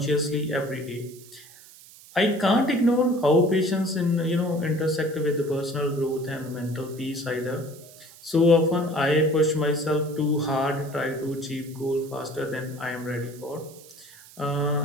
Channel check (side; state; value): right; noise; hiss, 21 dB below the sound